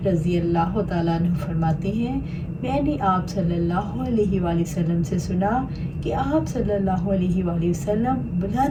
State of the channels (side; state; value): both; identical; correlation 1.00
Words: رضی اللہ تعالیٰ عنہ فرماتے ہیں، میں نے آپ صلی اللہ علیہ وآلہ وسلم سے سنا کہ آپ صلی اللہ علیہ وآلہ وسلم